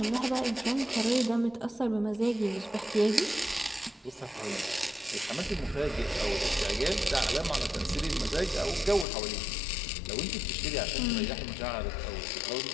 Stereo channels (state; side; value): drops out; right; at 9.1 s